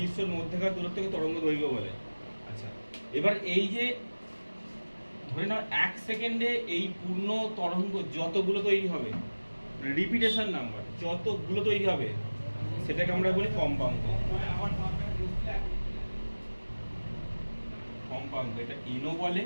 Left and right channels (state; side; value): inverted; both; correlation -1.00